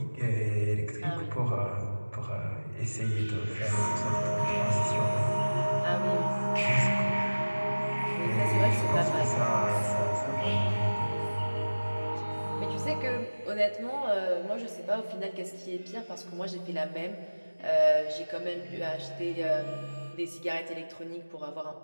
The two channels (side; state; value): both; inverted; correlation -1.00